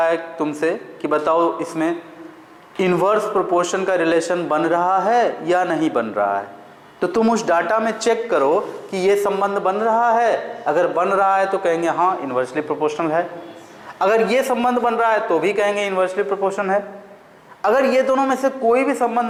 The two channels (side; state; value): both; identical; correlation 1.00